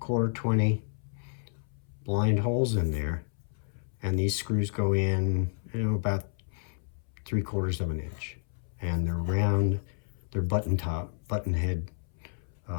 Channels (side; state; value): right; silent; 57 dB below the other